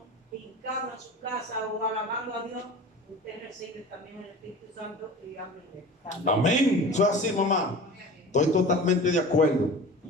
hincado en su casa o alabando a Dios, usted recibe también el Espíritu Santo y háblele. Amén. Eso es así, mamá. Estoy totalmente de acuerdo.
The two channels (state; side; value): normal; both; correlation 0.37